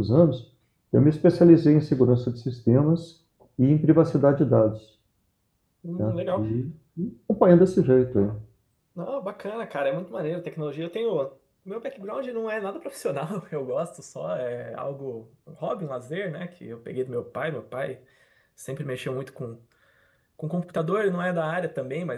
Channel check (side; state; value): both; identical; correlation 1.00